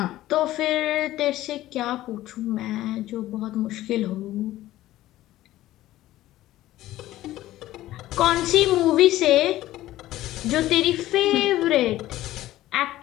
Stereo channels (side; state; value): right; quieter; 15.1 dB